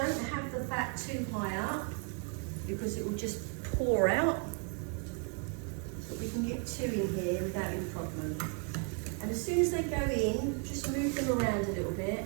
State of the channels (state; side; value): quieter; left; 36.8 dB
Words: have the fat too high up because it will just pour out. But we can get 2 in here without any problem. And as soon as they go in, just move them around a little bit,